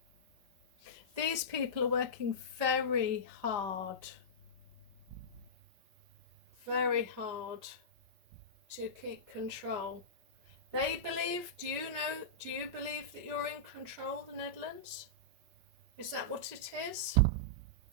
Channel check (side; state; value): left; late; 5.4 ms